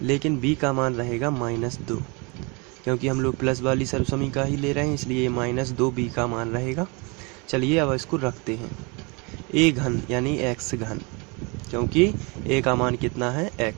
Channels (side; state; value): left; quieter; 29.6 dB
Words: लेकिन b का मान रहेगा -2, क्योंकि हम लोग प्लस वाली सर्वसमीका ही ले रहे हैं, इसलिए -2b का मान रहेगा। चलिए अब इसको रखते हैं। a घन यानी x घन, क्योंकि a का मान कितना है